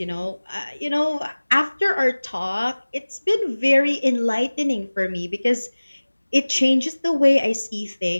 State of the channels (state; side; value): inverted; both; correlation -1.00